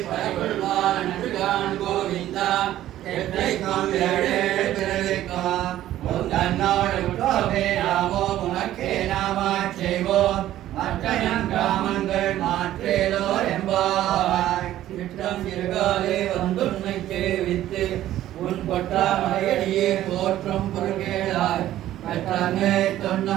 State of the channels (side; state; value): left; quieter; 13.3 dB